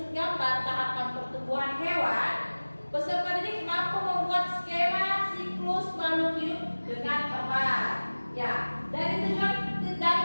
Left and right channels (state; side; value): inverted; both; correlation -1.00